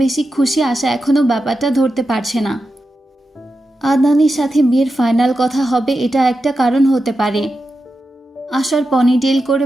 বেশি খুশি আশা এখনো ব্যাপারটা ধরতে পারছে না। আদনানের সাথে বিয়ের ফাইনাল কথা হবে, এটা একটা কারণ হতে পারে। আশার পনিটেল করে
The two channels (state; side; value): normal; both; correlation 0.90